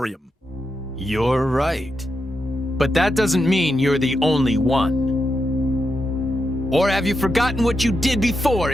You're right. But that doesn't mean you're the only one. Or have you forgotten what you did before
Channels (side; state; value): both; normal; correlation 0.86